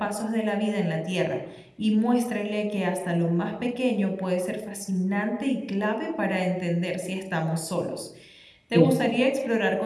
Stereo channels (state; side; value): identical; both; correlation 1.00